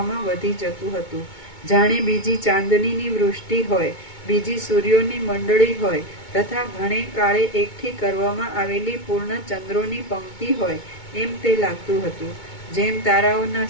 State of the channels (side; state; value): right; late; 2.2 ms